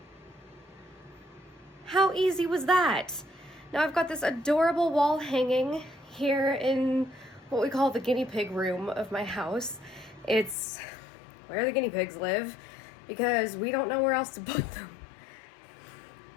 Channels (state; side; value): drops out; right; at 10.6 s